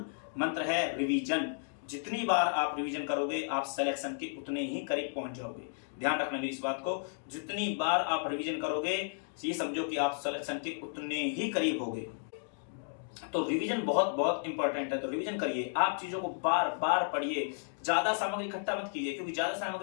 मंत्र है, रिवीजन। जितनी बार आप रिवीजन करोगे आप सिलेक्शन के उतने ही करीब पहुंच जाओगे। ध्यान रखना मेरी इस बात को, जितनी बार आप रिवीजन करोगे ये समझो कि आप सिलेक्शन के उतने ही करीब होगे। तो रिवीजन बहुत बहुत इंपॉर्टेंट है। तो रिवीजन करिए, आप चीजों को बार बार पढ़िए, ज्यादा सामग्री इकट्ठा मत कीजिए, क्योंकि ज्यादा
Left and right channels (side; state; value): right; silent; digital silence